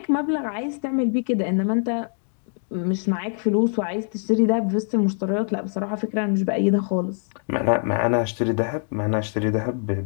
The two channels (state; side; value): silent; right; 56 dB below the other